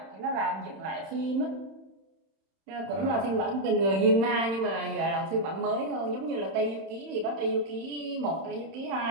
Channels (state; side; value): late; left; 31 ms